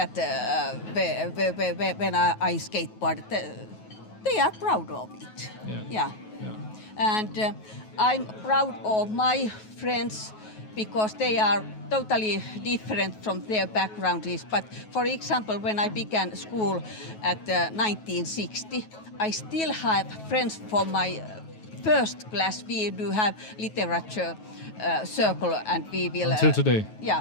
when I skateboard, they are proud of it. Yeah. And I'm proud of my friends because they are totally different from their backgrounds. But for example, when I began school at 1960, I still have friends from my first class. We do have literature circle, and we will... Until today?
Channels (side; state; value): right; late; 9.3 ms